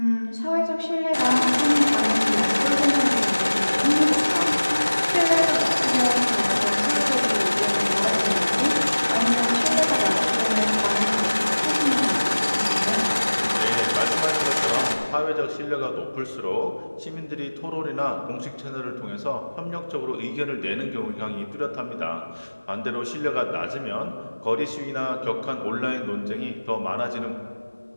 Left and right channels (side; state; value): both; inverted; correlation -1.00